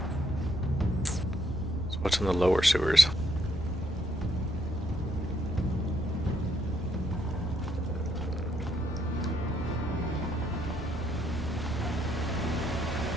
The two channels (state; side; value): normal; both; correlation 0.72